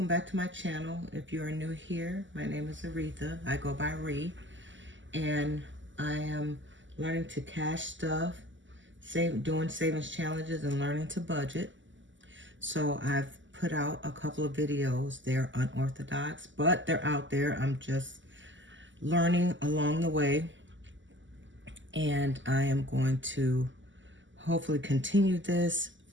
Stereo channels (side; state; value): left; late; 0.54 ms